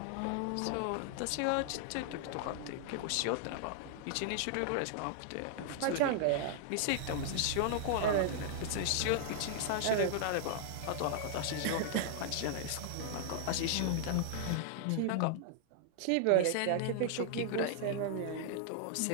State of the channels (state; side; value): different; both; correlation -0.01